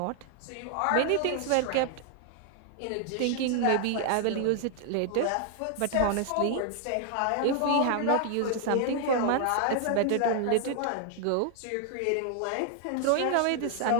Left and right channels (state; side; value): different; both; correlation 0.00